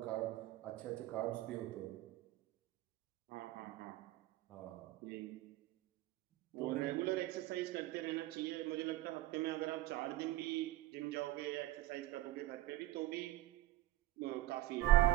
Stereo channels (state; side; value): quieter; left; 16.0 dB